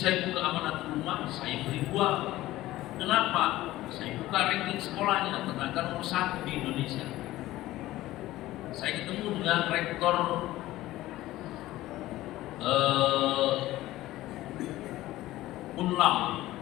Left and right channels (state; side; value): quieter; right; 16.2 dB